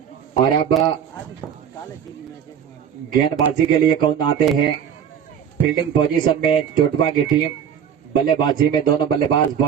और अब गेंदबाजी के लिए कौन आते हैं? फील्डिंग पोजीशन में चोटबा की टीम, बल्लेबाजी में दोनों बल्लेबाज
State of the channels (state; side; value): quieter; left; 8.4 dB